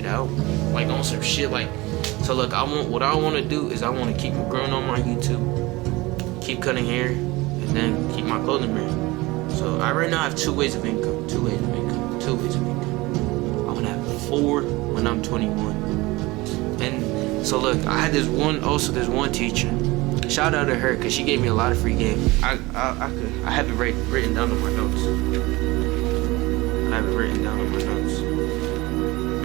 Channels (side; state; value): left; quieter; 21.6 dB